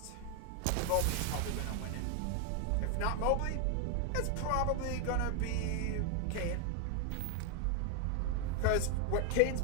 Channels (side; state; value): both; different; correlation 0.01